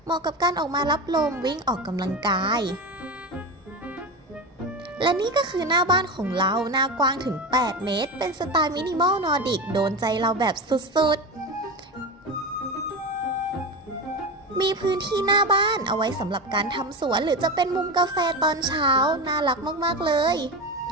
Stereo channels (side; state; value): both; normal; correlation 0.23